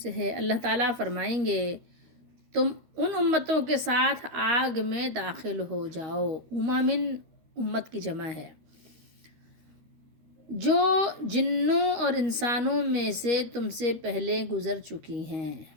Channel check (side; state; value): left; late; 13 ms